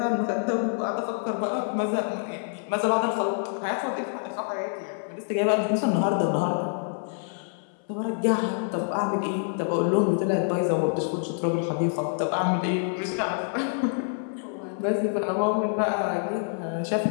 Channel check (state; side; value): silent; right; 60 dB below the other